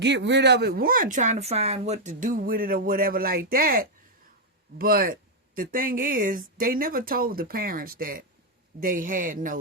rid of it. One, trying to find what to do with it or whatever like that. But the thing is, they never told the parents that they had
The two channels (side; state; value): both; normal; correlation -0.02